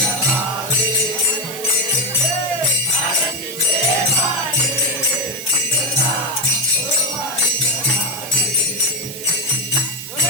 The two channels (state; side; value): noise; right; hiss, 10 dB below the sound